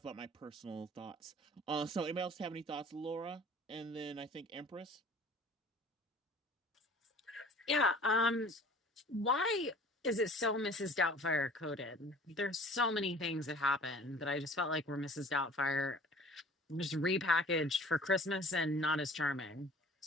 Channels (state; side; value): normal; both; correlation 0.47